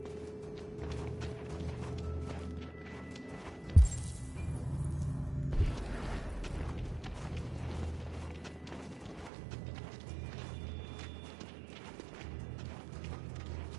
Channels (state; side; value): drops out; left; at 9.3 s